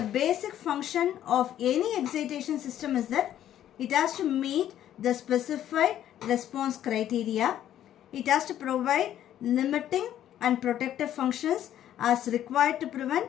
basic function of any excitation system is that it has to meet the specified response criteria. It has to provide limiting and protective functions as required to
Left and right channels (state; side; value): quieter; right; 11.4 dB